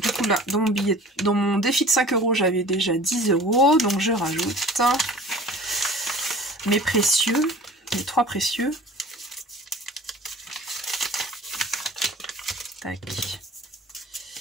coup là, dans mon défi de 5 €, j'avais déjà 10 €. Donc je rajoute mes précieux, mes 3 précieux. Tac.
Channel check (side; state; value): both; normal; correlation 0.44